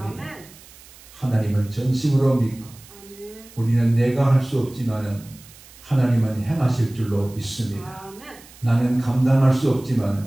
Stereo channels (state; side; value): noise; right; hiss, 22 dB below the sound